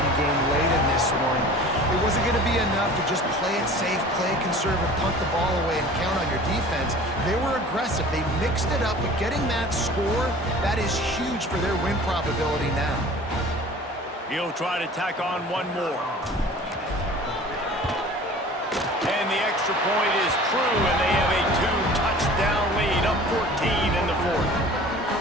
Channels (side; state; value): both; normal; correlation 0.44